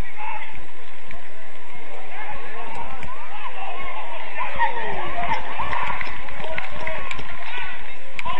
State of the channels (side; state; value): both; identical; correlation 1.00